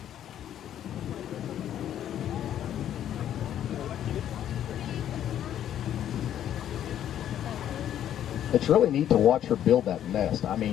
It's really neat to watch her build that nest. I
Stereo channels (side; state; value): right; quieter; 10.7 dB